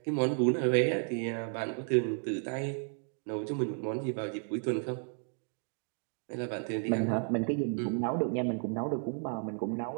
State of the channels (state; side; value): silent; left; 56 dB below the other